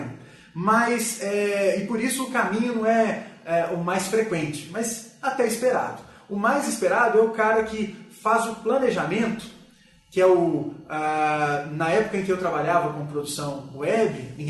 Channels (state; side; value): identical; both; correlation 1.00